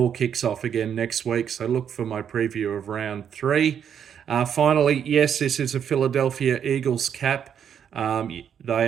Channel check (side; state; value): left; quieter; 8.4 dB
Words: kicks off again next week. So look for my preview of round three. Finally, yes, this is a Philadelphia Eagles cap.